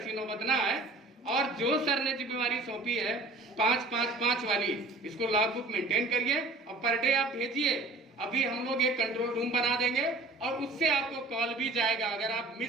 नौबत ना आए। और जो सर ने जिम्मेवारी सौंपी है 5-5-5 वाली, इसको लॉग बुक मेंटेन करिए और पर डे आप भेजिए। अभी हम लोग एक कंट्रोल रूम बना देंगे और उससे आपको कॉल भी जाएगा। अगर आप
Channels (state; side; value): quieter; left; 3.0 dB